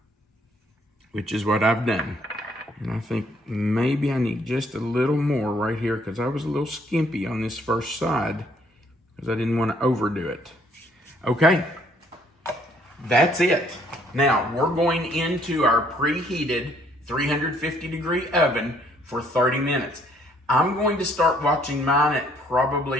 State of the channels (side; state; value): both; normal; correlation 0.65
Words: which is what I've done. And I think maybe I need just a little more right here, because I was a little skimpy on this first side because I didn't want to overdo it. Okay, that's it. Now, we're going into our preheated 350-degree oven for 30 minutes. I'm going to start watching mine at